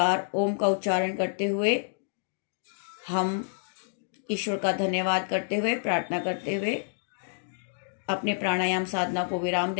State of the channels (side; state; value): right; silent; digital silence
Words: ओम का उच्चारण करते हुए हम ईश्वर का धन्यवाद करते हुए, प्रार्थना करते हुए अपने प्राणायाम साधना को विराम